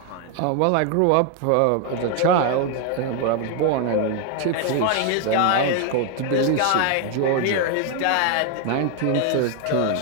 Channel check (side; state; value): both; different; correlation 0.01